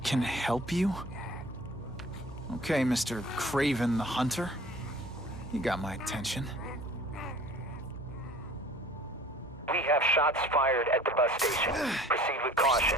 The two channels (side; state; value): both; normal; correlation 0.47